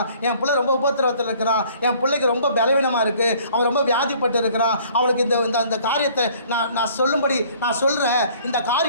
என் பிள்ளை ரொம்ப உபத்திரவத்தில் இருக்கிறான், என் பிள்ளைக்கு ரொம்ப பலவீனமாக இருக்குது, அவன் ரொம்ப வியாதிப்பட்டு இருக்கிறான், அவனுக்கு இந்த காரியத்தை நான் சொல்லும்படி நான் சொல்கிறேன், இந்த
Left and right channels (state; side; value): inverted; both; correlation -0.56